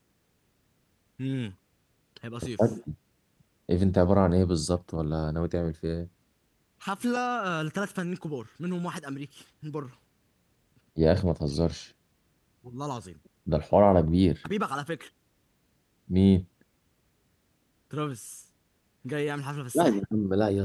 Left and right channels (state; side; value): identical; both; correlation 1.00